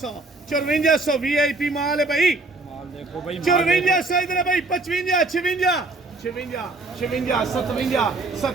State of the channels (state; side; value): quieter; left; 3.2 dB